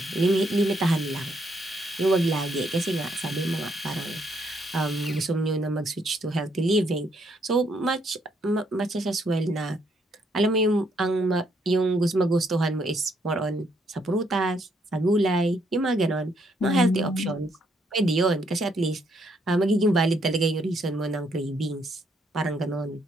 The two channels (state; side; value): normal; both; correlation 0.72